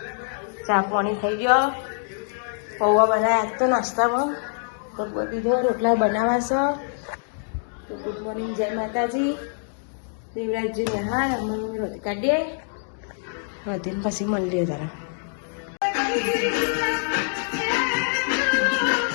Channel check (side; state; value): right; silent; digital silence